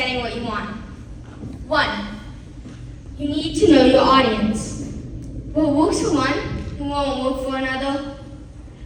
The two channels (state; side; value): identical; both; correlation 1.00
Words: what you want. 1, you need to know your audience. What works for one won't work for another.